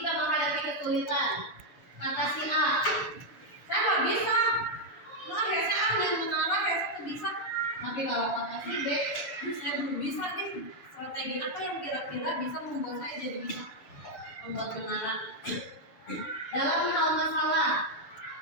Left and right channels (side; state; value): right; late; 6.9 ms